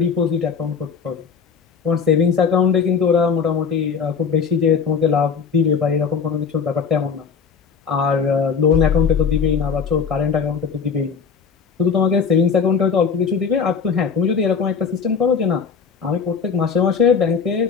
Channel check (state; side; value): quieter; right; 6.0 dB